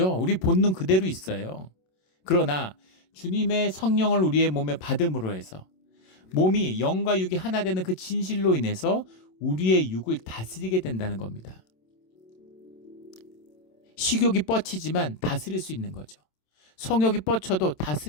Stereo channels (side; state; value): right; late; 27 ms